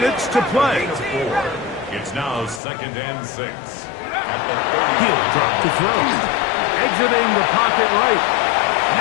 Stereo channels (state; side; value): drops out; right; at 2.6 s